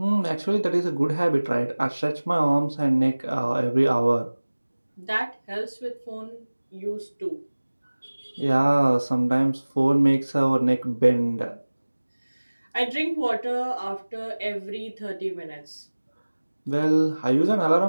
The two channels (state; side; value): inverted; both; correlation -1.00